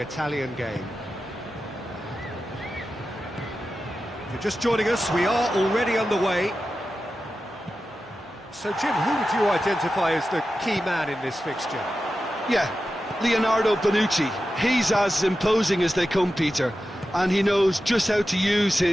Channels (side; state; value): both; normal; correlation 0.92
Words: game. If you're just joining us, we are already underway. So, Jim, who would you identify as the key man in this fixture? Yeah, Leonardo Bonucci. He's as imposing as they come, Peter, and he knows just how to use